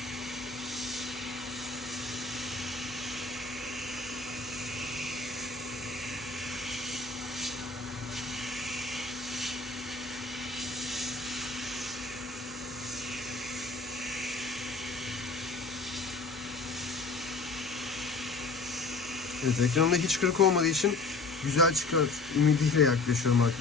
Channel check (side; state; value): right; quieter; 3.9 dB